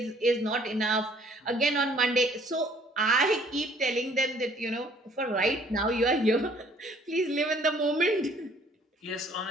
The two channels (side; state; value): both; normal; correlation 0.59